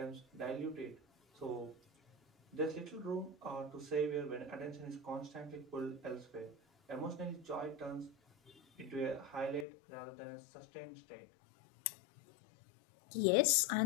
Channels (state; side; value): drops out; right; at 9.7 s